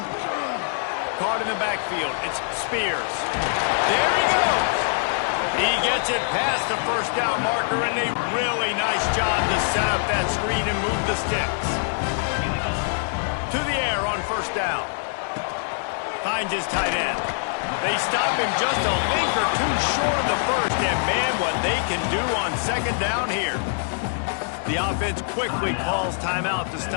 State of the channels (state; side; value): silent; right; digital silence